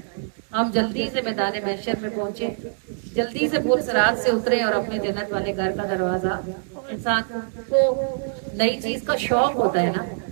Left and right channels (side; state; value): left; silent; 63 dB below the other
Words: ہم جلدی سے میدان محشر میں پہنچے، جلدی سے پور صراط سے اترے اور اپنے جنت والے گھر کا دروازہ۔ انسان کو نئی چیز کا شوق ہوتا ہے نا،